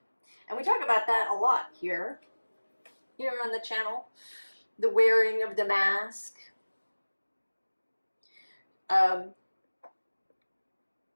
And we talk about that a lot here on the channel. The wearing of the mask. To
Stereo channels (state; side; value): inverted; both; correlation -1.00